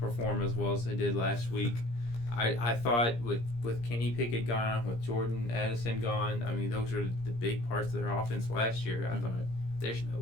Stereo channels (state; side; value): late; right; 17 ms